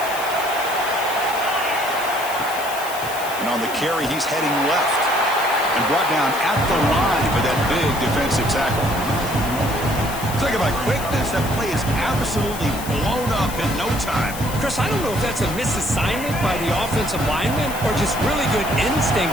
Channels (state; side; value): noise; left; hiss, 11 dB below the sound